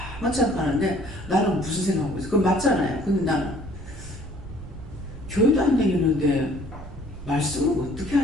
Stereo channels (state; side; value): noise; right; rumble, 16 dB below the sound